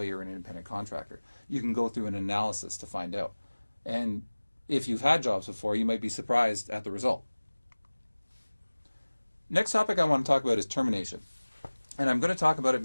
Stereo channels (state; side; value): inverted; both; correlation -1.00